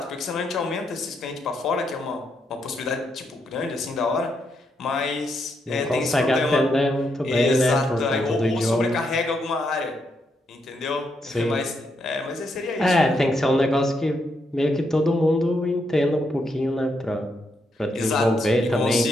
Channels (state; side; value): normal; both; correlation 0.79